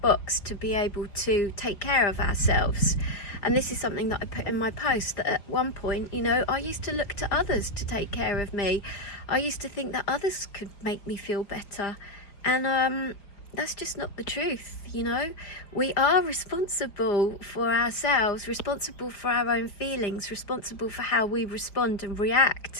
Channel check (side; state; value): right; late; 5.0 ms